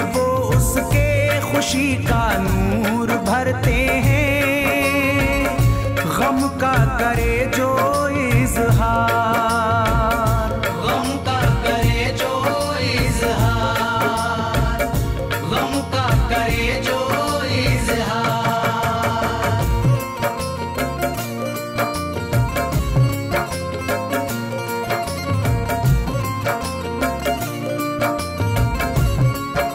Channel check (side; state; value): both; identical; correlation 1.00